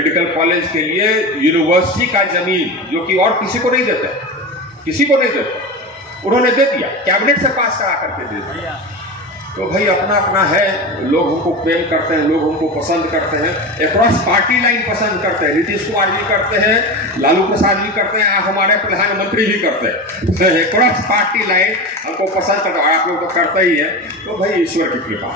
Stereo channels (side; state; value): both; normal; correlation 0.25